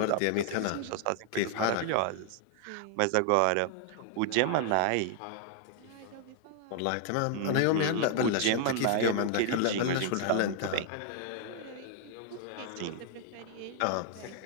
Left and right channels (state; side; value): different; both; correlation 0.00